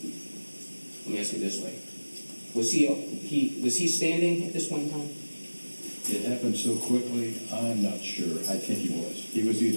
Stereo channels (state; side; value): inverted; both; correlation -1.00